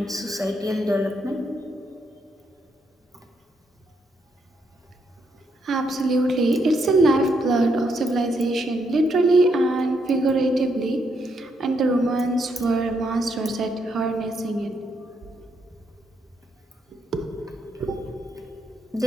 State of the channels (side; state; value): both; normal; correlation 0.77